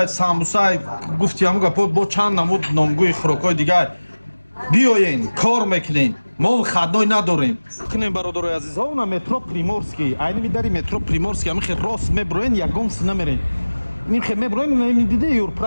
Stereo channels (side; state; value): both; inverted; correlation -1.00